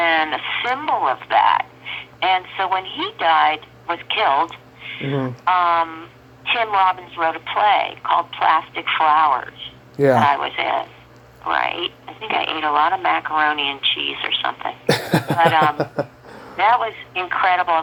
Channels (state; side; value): identical; both; correlation 1.00